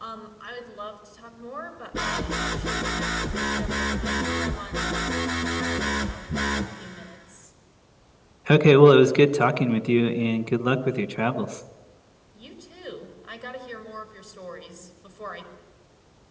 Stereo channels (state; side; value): identical; both; correlation 1.00